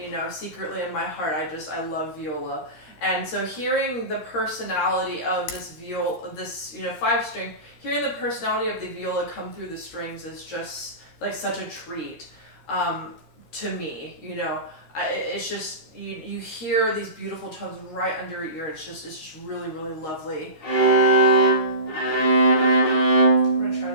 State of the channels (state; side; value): late; right; 13 ms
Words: secretly in my heart, I love viola. And so hearing the personality of this viola, this 5-string, hearing the personality of the viola come through the strings is just like such a treat to me. It's just you hear these beautiful tones right under your ear. It's just really, really lovely. I'm gonna try